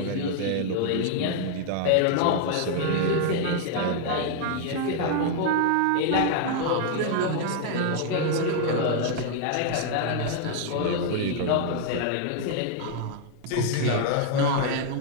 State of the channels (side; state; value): both; different; correlation -0.01